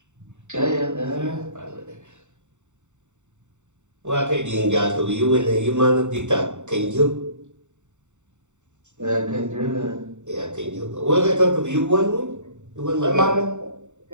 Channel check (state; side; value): late; left; 0.84 ms